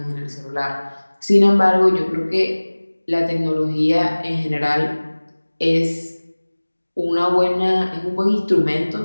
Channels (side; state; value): both; inverted; correlation -1.00